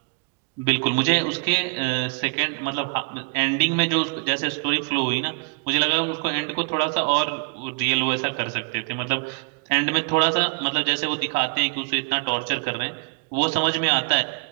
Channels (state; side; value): quieter; left; 36.7 dB